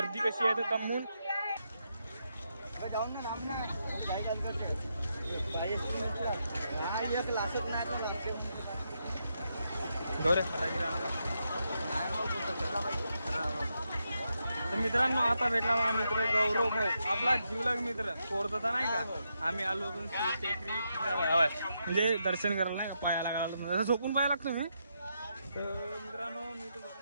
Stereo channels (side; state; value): both; inverted; correlation -0.82